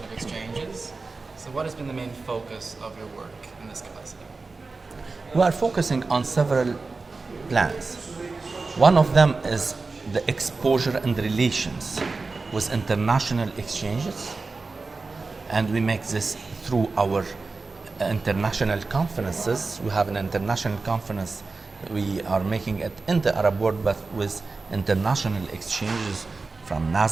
of Exchanges. So what has been the main focus of your work in this capacity? We are focusing on several plans. One of them is the exposure and relations with international exchanges, and we make this through our international conferences. We have an international conference. We are making it in the Arab world, but with international exchanges from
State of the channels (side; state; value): left; quieter; 3.9 dB